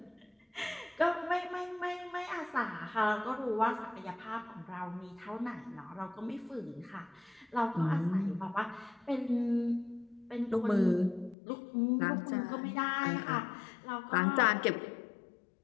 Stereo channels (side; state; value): right; drops out; at 11.4 s